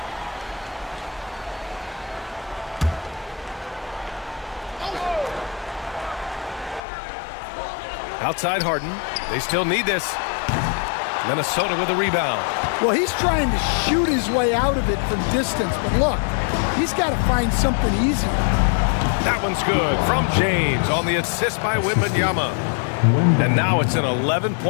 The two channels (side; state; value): right; drops out; at 6.8 s